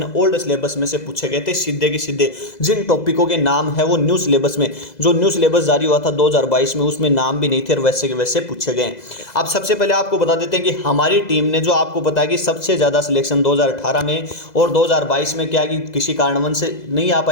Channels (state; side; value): late; right; 2.0 ms